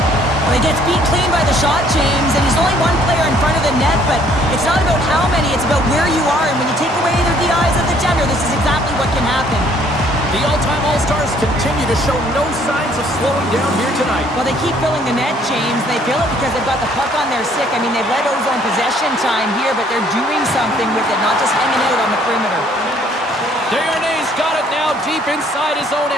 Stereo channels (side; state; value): both; normal; correlation 0.62